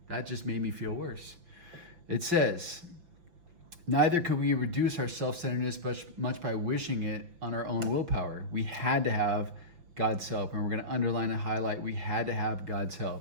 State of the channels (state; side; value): late; left; 5.8 ms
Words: That just made me feel worse. It says, neither could we reduce our self-centeredness much by wishing it on our own willpower. We had to have God's help, and we're going to underline and highlight we had to have God's